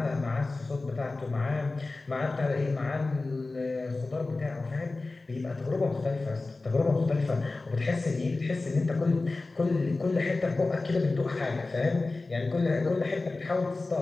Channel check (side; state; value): right; quieter; 3.4 dB